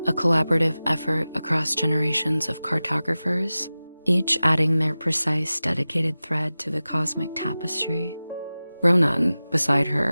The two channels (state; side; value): inverted; both; correlation -0.96